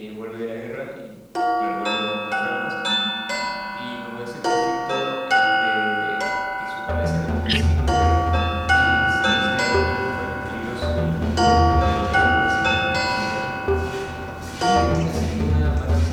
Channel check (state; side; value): identical; both; correlation 1.00